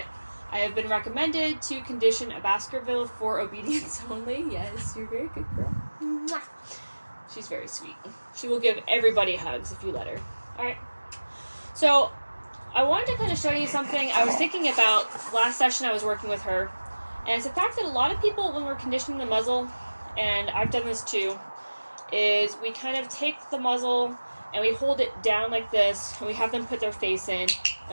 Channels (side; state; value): both; inverted; correlation -1.00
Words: I have been recommended to condition a Baskerville for obedience only. Yes, you're a very good girl. Mwah. She's very sweet. She will give everybody hugs if you let her. Alright. So, I wanted to kind of show you something I was thinking about last session I was working with her. And it's the fact that a lot of people, when we're conditioning the muzzle, and I've done this too, is we kind of take the muzzle and we hold it down like this, and we have them put their face in,